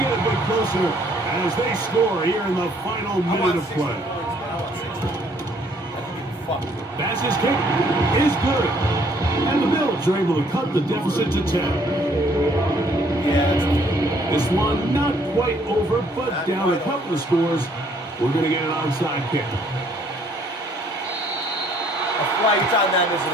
a bit closer as they score here in the final minute of play. Bass's kick is good. And the Bills are able to cut the deficit to 10. Yeah, this one not quite over, but down a couple of scores. We're going to get an onside kick. A flag on that, isn't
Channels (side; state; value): both; normal; correlation 0.63